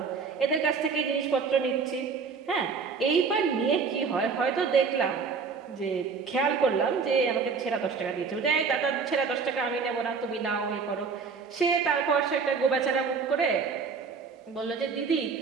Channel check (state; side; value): quieter; left; 5.3 dB